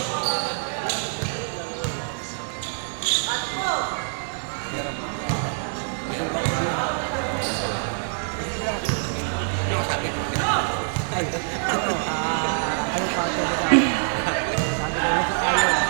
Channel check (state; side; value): silent; left; digital silence